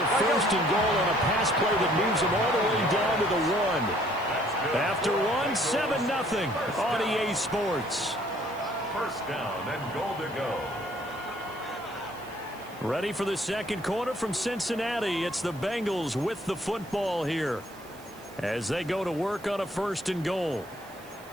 1st and goal on a pass play that moves them all the way down to the 1. After 7-0 on EA Sports. First down and goal to go. Ready for the second quarter from Cincinnati. It's the Bengals with the football here as they go to work on a 1st and goal.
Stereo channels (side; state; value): right; noise; hiss, 23 dB below the sound